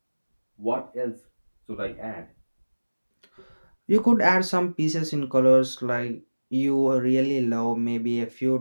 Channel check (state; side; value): inverted; both; correlation -1.00